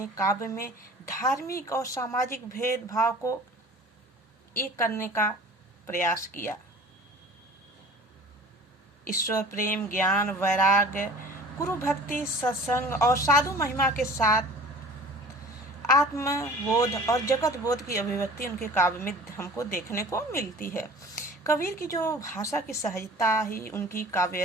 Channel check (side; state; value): both; normal; correlation 0.44